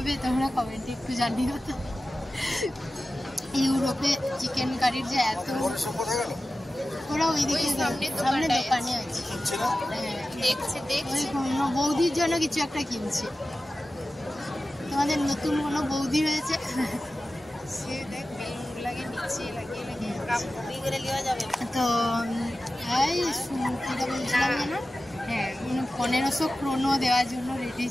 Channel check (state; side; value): normal; both; correlation 0.94